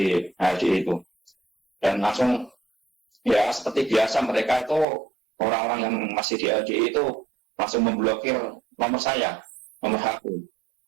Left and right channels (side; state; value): left; drops out; at 4.9 s